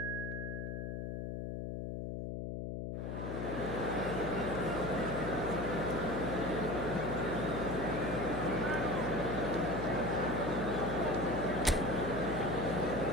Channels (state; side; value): noise; left; hum, 4 dB below the sound